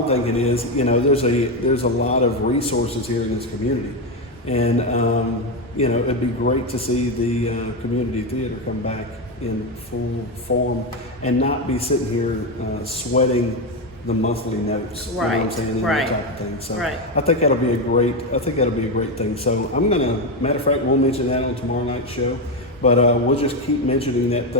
thinking is, there's a lot of resources here in this community, and it'd be great to see the community theater come back in full form and not be sitting here sweating the monthly notes. You know what I'm Right, saying? And right, that type of thing. So right. I think that'll be a great thing. So matter of fact, we'll mention that on tomorrow night's show. But we'll just keep mentioning that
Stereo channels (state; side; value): normal; both; correlation 0.10